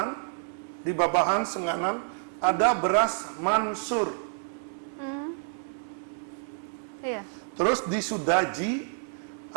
di Babahan, Senganan, ada beras Mansur. Terus di Sudaji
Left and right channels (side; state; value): left; silent; digital silence